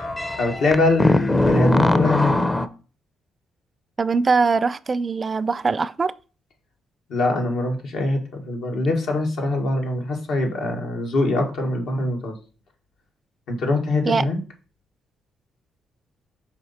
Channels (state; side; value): normal; both; correlation 0.82